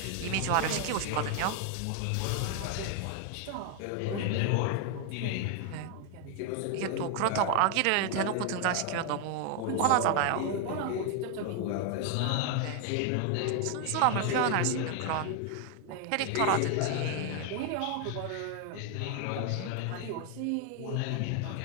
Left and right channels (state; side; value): different; both; correlation 0.00